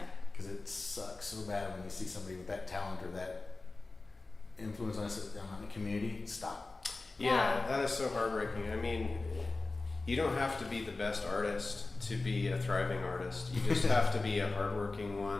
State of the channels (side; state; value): right; quieter; 3.4 dB